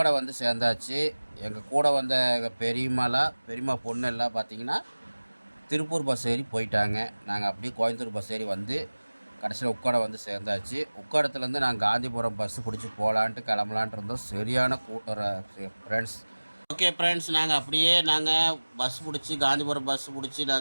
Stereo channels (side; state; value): both; inverted; correlation -1.00